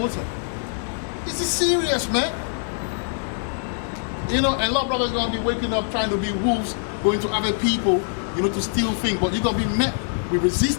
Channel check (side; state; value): right; silent; digital silence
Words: This is serious, man. You know, and a lot of brothers are gonna be waking up trying to be wolves, going to other people, you know, to steal things, but you're gonna be met with